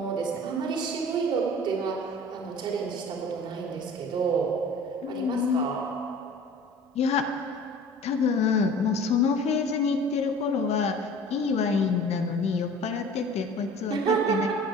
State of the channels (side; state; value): both; normal; correlation 0.44